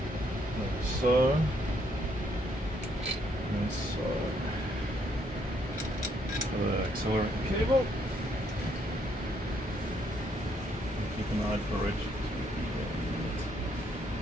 Like so. And so. The accelerator cable. Keep an eye for it.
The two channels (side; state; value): both; normal; correlation 0.71